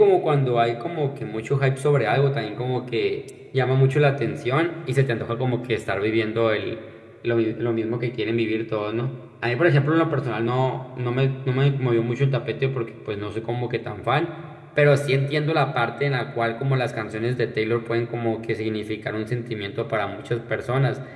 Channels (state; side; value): identical; both; correlation 1.00